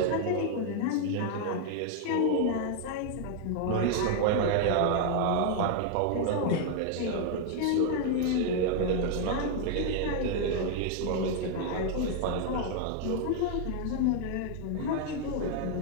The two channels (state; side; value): different; both; correlation 0.00